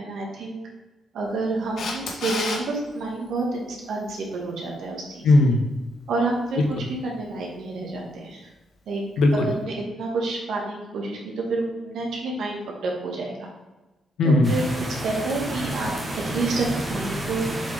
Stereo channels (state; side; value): normal; both; correlation 0.75